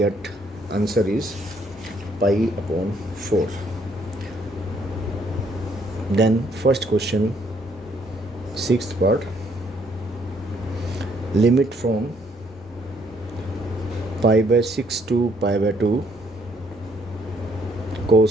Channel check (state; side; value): normal; both; correlation 0.67